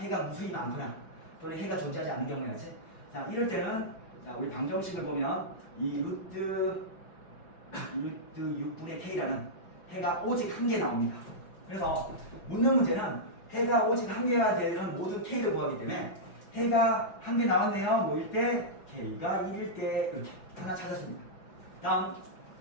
무수히 많거나 또는 해가 존재하지 않는 경우야지. 자, 이럴 때는 자, 우리 방정식을 보면 이 루트 6분의 K라는 해가 오직 한 개 나옵니다. 그래서 묻는 문제는 해가 오직 한 개가 되는 모든 K를 구하기 때문에 해가 한 개 나왔네요. 뭐일 때? K가 1일 때 이렇게 하나 찾았습니다. 다음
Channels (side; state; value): right; late; 5.4 ms